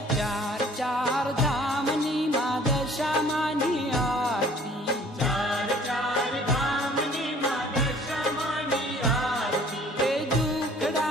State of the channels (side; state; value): both; normal; correlation 0.54